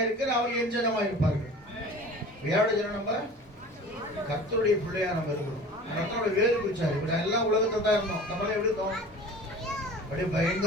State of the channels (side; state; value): both; normal; correlation 0.41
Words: அவர்கள் என் ஜனமாயிருப்பார்கள். யாரோட ஜனம்? நம்ம கர்த்தருடைய பிள்ளையா நம்ம இருக்கிறோம். கர்த்தருடைய வேறு பிடிச்சாரு. இப்படி எல்லாம் உலகத்தை தான் இருந்தோம். நம்மளே எப்படி இருந்தோம்? அப்படியே